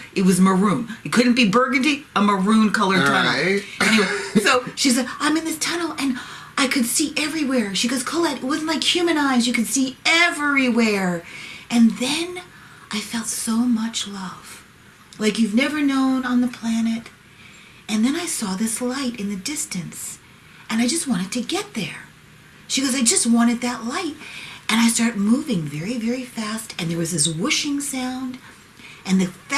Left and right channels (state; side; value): identical; both; correlation 1.00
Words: It was maroon. It couldn't be burgundy, a maroon-colored tunnel. Right. Anyway, so she said, I'm in this tunnel, and I could see everywhere. She goes, Colette, it wasn't like human eyes. You could see everywhere. And then I felt so much love, like you've never known on the planet. And then I saw this light in the distance, and I just wanted to get there. She goes, I just wanted that light. And I started moving very, very fast, and there was this whooshing sound. And the